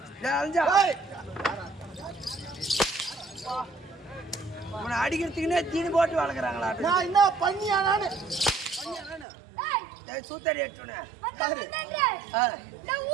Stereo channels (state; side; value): drops out; left; at 9.2 s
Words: உன்னை அடிக்கிறதுக்குன்னே தீனி போட்டு வளர்க்குறாங்களா? நான் என்ன பண்ணியா? நானு சூத்தடி எட்டுனே